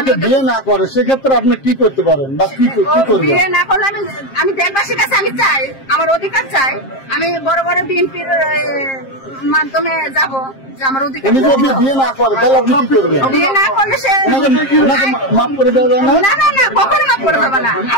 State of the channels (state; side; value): late; right; 7.5 ms